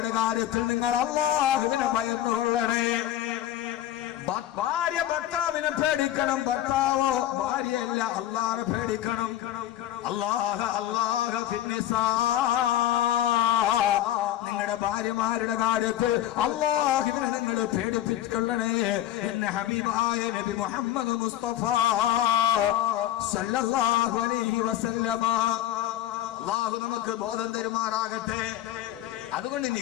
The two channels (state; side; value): quieter; right; 12.5 dB